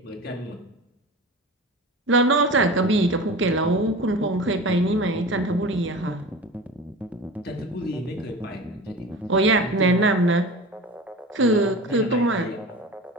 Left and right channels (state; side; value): normal; both; correlation 0.33